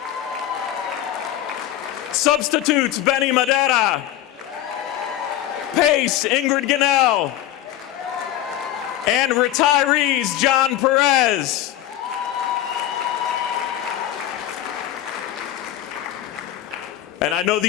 Substitutes, Benny Madera. PACE, Ingrid Gunnell. And retirees, John Perez. And I know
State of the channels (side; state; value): right; quieter; 12.5 dB